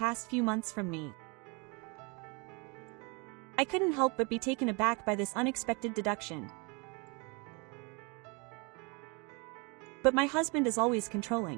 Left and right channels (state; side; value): quieter; left; 30.3 dB